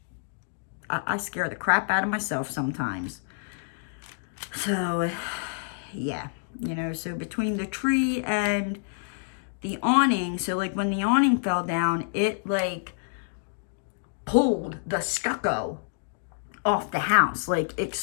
I scare the crap out of myself sometimes. So, yeah, so between the tree and the awning, so like when the awning fell down, it like pulled the stucco off the house, like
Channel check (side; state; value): right; silent; digital silence